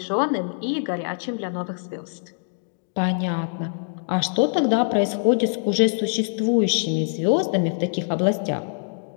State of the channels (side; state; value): right; silent; digital silence